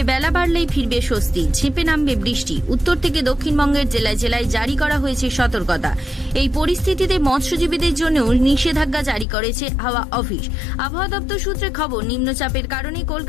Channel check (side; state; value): right; drops out; at 9.2 s